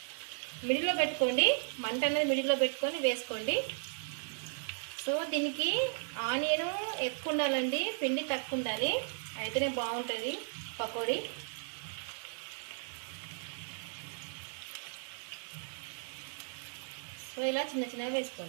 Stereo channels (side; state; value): left; silent; digital silence